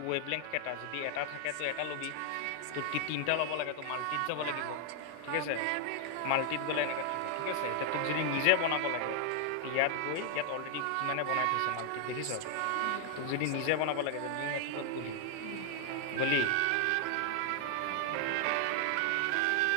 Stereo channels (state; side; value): different; both; correlation 0.00